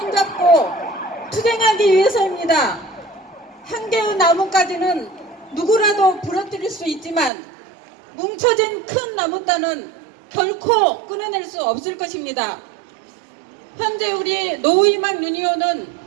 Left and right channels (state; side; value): drops out; left; at 7.3 s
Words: 투쟁하기 위해서입니다. 한 개의 나뭇가지는 누구라도 부러뜨릴 수 있지만 뭉쳐진 큰 나뭇단은 결코 끊어낼 수 없을 것입니다. 현재 우리 노희망 유니온은